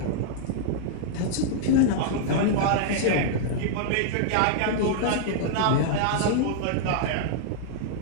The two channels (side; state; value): both; different; correlation -0.01